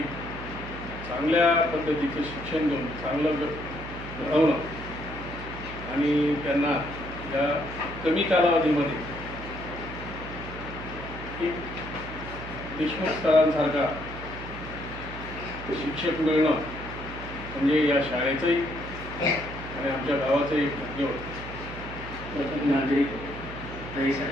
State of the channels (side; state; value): right; noise; hum, 11 dB below the sound